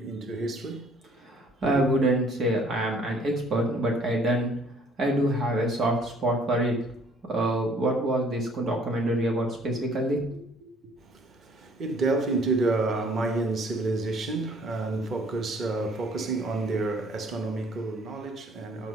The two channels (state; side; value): normal; both; correlation 0.59